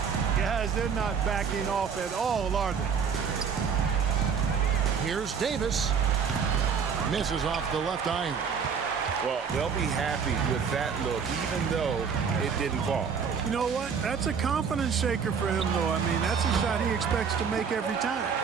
Guys, they're not backing off at all, are they? Here's Davis. Misses off the left iron. Well, they'll be happy with that look, even though it didn't fall. You know what? That's a confidence shaker for him, though. I mean, that's a shot he expects to make every time.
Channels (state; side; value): quieter; left; 6.4 dB